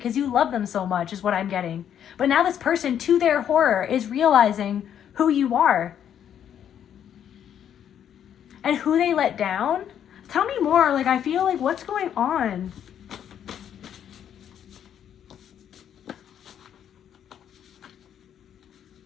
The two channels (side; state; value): right; quieter; 9.4 dB